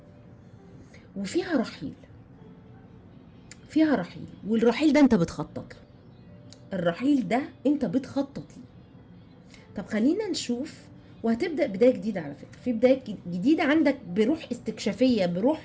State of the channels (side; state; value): both; identical; correlation 1.00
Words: وفيها رحيل، والرحيل ده انت بتخطط له. الرحيل ده انت بتخطط له. طب خلينا نشوف. وهتبدأ بداية جديدة على فكرة، في بداية جديدة عندك بروح استكشافية،